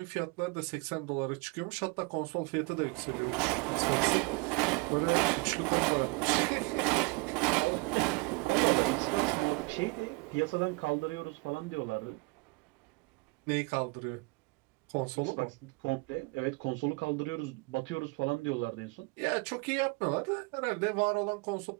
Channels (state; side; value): quieter; left; 28.5 dB